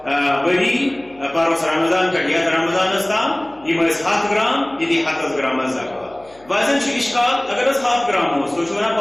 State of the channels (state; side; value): noise; left; hum, 28 dB below the sound